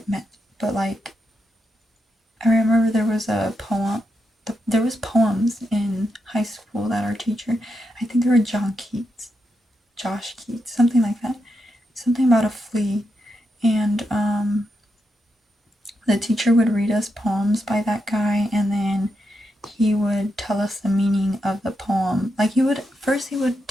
meant, but like, I remember there was a poem. There was poems in high school that our teacher, I think they were Josh Keats, something like that, something about a flea, and the teacher would read us poems by that guy, and then he would tell us the meaning of the poem. Like he would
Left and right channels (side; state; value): both; normal; correlation 0.84